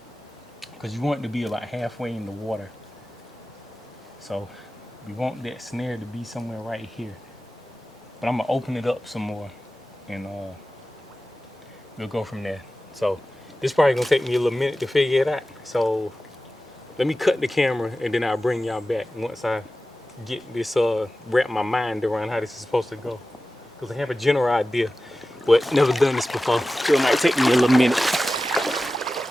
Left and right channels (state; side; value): normal; both; correlation 0.95